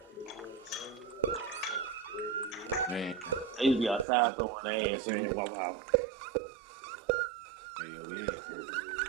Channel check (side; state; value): left; drops out; at 4.0 s